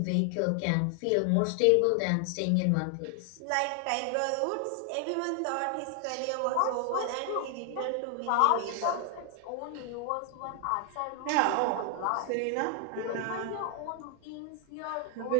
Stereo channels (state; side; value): different; both; correlation 0.00